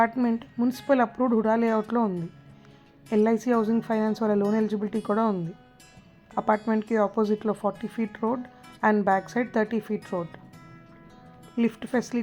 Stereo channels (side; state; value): both; identical; correlation 1.00